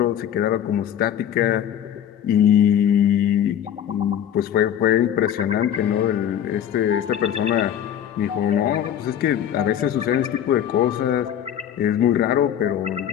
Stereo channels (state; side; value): quieter; right; 10.0 dB